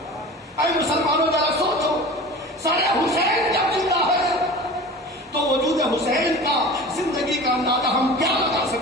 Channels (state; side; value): normal; both; correlation 0.37